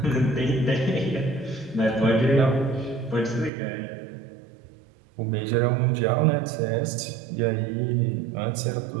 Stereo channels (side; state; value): left; drops out; at 3.5 s